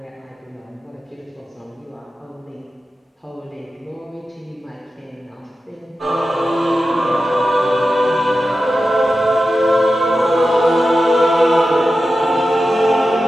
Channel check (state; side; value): normal; both; correlation 0.92